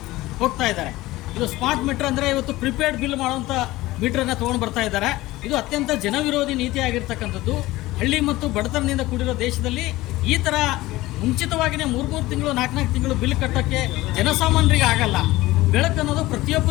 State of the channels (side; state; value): right; quieter; 18.2 dB